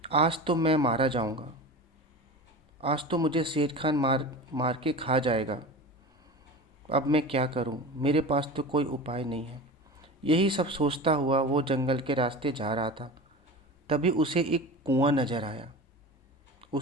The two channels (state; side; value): normal; both; correlation 0.31